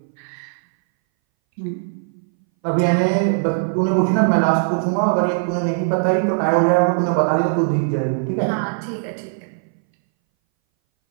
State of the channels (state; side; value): silent; left; 62 dB below the other